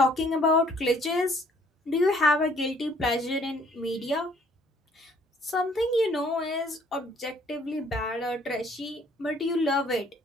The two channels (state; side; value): normal; both; correlation 0.61